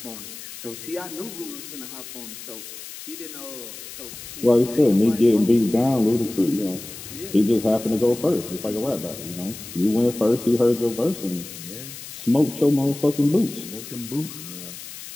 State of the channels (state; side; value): noise; left; hiss, 13 dB below the sound